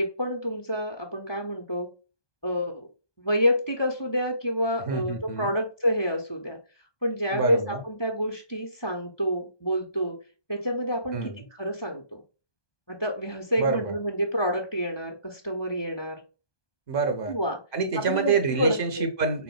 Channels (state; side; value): late; right; 1.2 ms